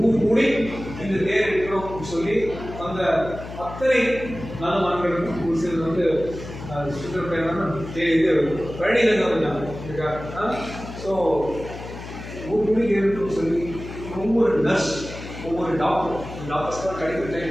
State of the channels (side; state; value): left; noise; hum, 11 dB below the sound